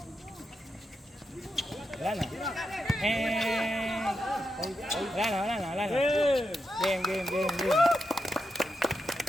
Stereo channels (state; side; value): normal; both; correlation 0.86